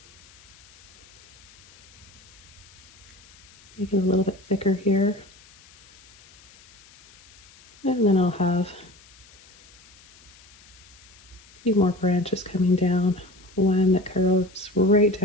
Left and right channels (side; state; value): left; noise; hiss, 25 dB below the sound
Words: Make it a little bit thicker here. And then I'll have a few more branches coming down. One that curves right